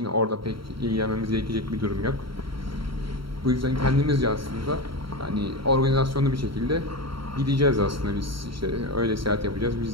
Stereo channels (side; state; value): left; late; 0.74 ms